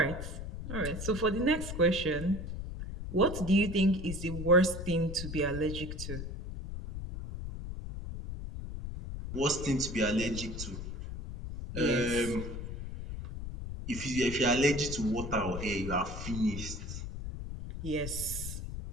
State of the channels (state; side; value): noise; left; rumble, 7 dB below the sound